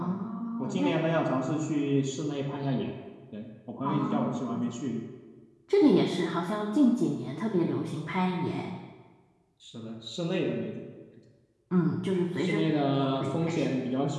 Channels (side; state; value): both; identical; correlation 1.00